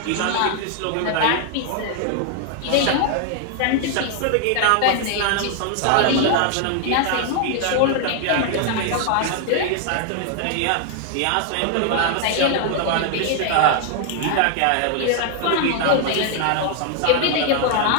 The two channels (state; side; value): different; both; correlation 0.00